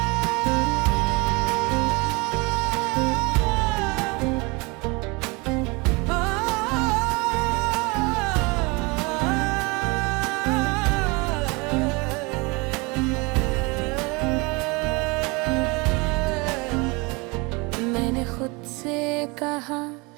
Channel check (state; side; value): quieter; left; 27.3 dB